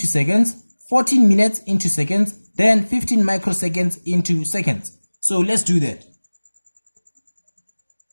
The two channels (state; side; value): inverted; both; correlation -1.00